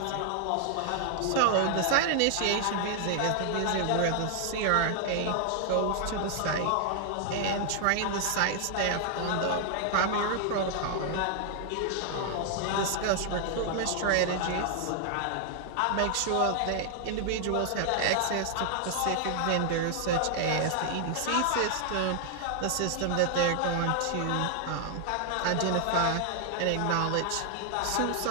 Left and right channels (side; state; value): both; different; correlation 0.00